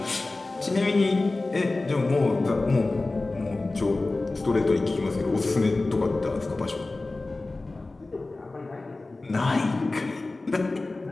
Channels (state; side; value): quieter; right; 3.2 dB